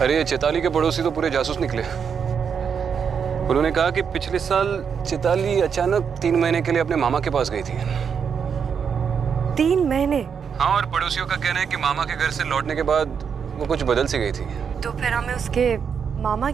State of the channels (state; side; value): quieter; left; 6.8 dB